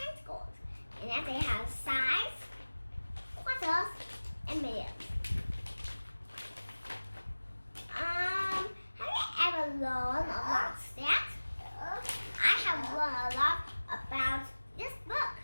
and then they have sides, quarters, and millions. Have you ever learned about that? I have learned a lot about this book,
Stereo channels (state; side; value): inverted; both; correlation -1.00